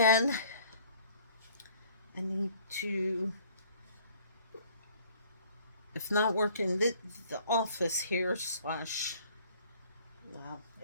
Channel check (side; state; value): both; inverted; correlation -0.55